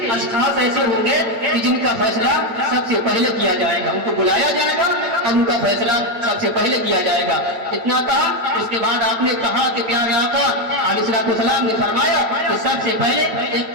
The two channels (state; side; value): late; left; 9.0 ms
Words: اشخاص ایسے ہوں گے کہ جن کا فیصلہ سب سے پہلے کیا جائے گا، ان کو بلایا جائے گا اور ان کا فیصلہ سب سے پہلے کیا جائے گا۔ اتنا کہا، اس کے بعد آپ نے کہا کہ پیارے آقا علیہ السلام نے فرمایا کہ سب سے پہلے ایک